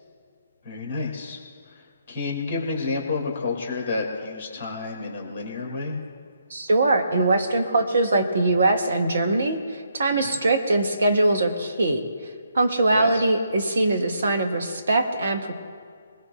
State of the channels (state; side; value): inverted; both; correlation -0.75